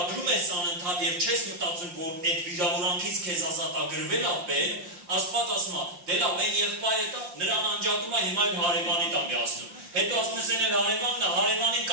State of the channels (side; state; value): left; late; 5.7 ms